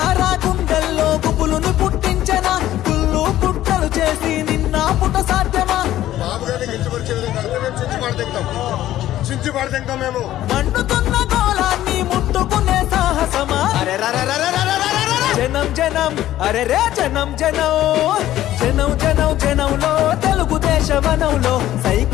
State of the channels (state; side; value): quieter; right; 13.6 dB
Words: గుండెల్లో గుబులును పుట్టించన కుళ్ళు పుట్టలు చేసి నిన్న పుట్ట సాధ్యమా మేము మండుతున్న గోళాన్ని ముట్టుకునే సాహసమా జనం జనం అరే రే జనం జనం జనం జనం జనంలో తెలుగుదేశ వనంలో